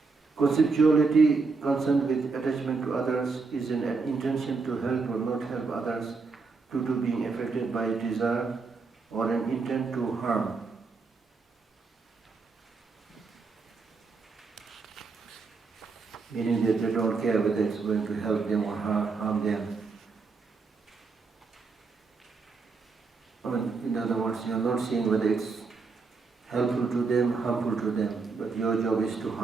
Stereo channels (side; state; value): left; quieter; 4.4 dB